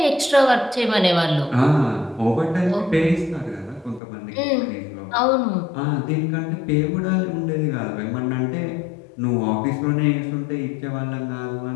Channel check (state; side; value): drops out; right; at 4.0 s